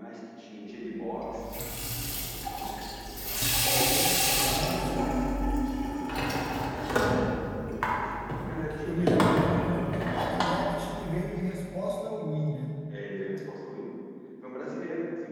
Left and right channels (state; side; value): identical; both; correlation 1.00